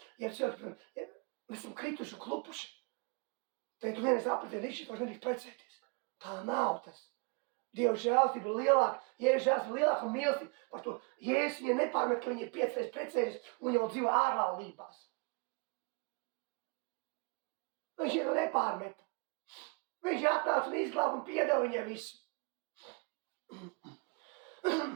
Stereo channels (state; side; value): quieter; left; 31.7 dB